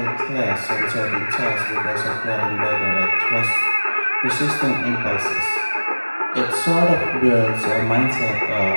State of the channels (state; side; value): inverted; both; correlation -1.00